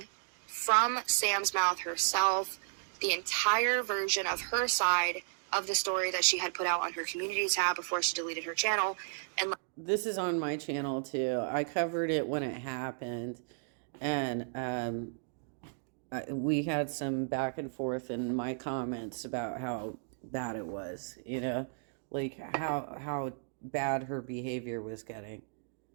from Sam's mouth herself the entire version of her side of the story that she had put out on her community tab before she deleted her channel. And this is on my channel too. I covered it when it happened, and we had some back and forth in my comments about how bad it was, like how bad her behavior was getting.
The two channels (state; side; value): silent; left; digital silence